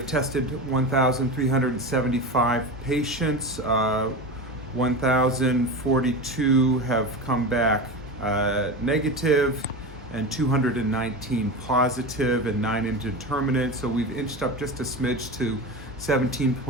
tested 1,375 patients. 1,042 have come back negative, and 219 positive and 9 indeterminate. So we've inched up just a smidge to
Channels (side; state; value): both; normal; correlation 0.25